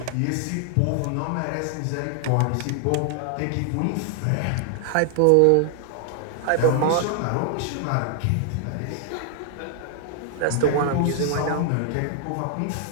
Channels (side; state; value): both; different; correlation 0.00